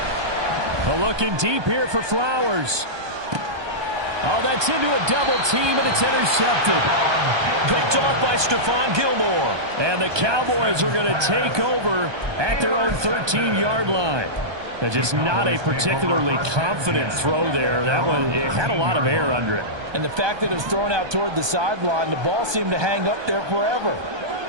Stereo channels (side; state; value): left; late; 1.2 ms